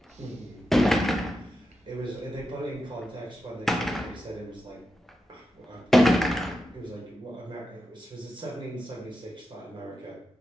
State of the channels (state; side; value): normal; both; correlation 0.88